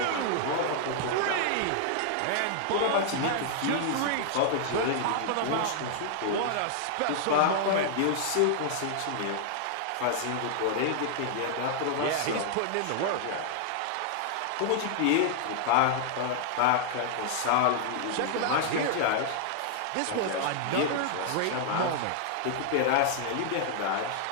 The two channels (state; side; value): different; both; correlation -0.01